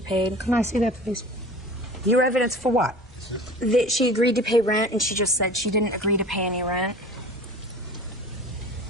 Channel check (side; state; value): both; normal; correlation 0.40